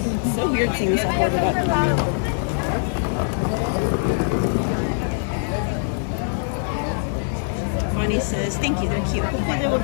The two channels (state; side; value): silent; right; digital silence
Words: It's so weird seeing stuff ordered up. Bonnie says, thank you, they're cute. Hopefully they will